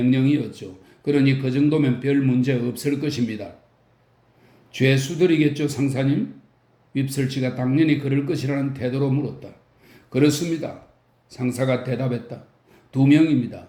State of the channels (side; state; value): both; identical; correlation 1.00